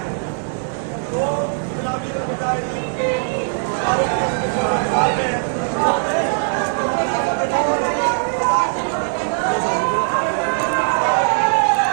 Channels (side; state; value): left; silent; digital silence